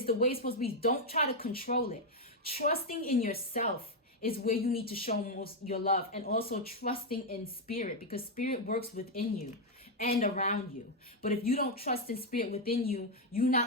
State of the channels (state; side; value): normal; both; correlation 0.02